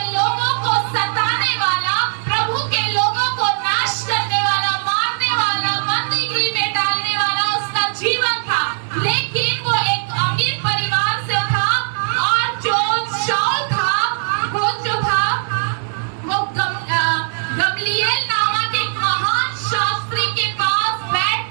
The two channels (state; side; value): silent; left; 67 dB below the other